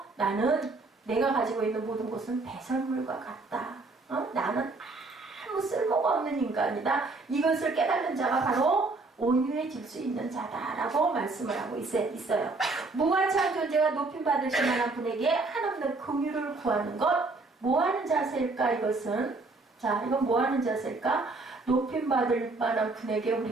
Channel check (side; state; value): left; quieter; 3.5 dB